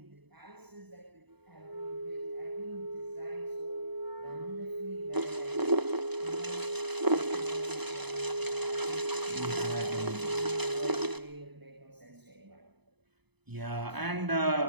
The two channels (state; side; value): late; left; 0.99 ms